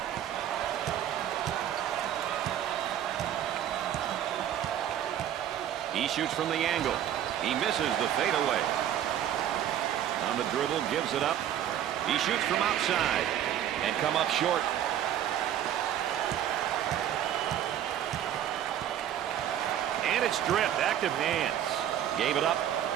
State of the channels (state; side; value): quieter; left; 10.7 dB